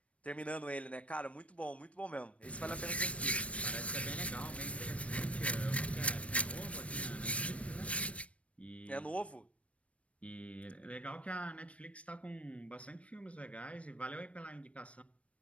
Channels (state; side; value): late; right; 0.063 ms